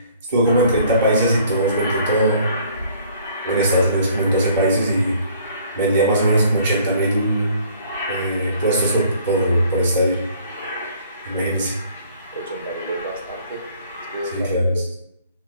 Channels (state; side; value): inverted; both; correlation -0.58